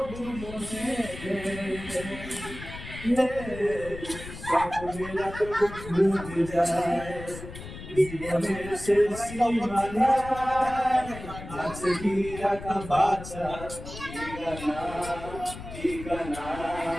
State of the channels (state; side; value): noise; left; rumble, 12 dB below the sound